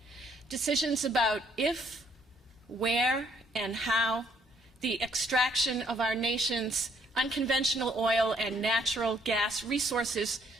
Decisions about if, where, and how the extraction of our nation's unconventional oil and natural gas resources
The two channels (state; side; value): normal; both; correlation 0.67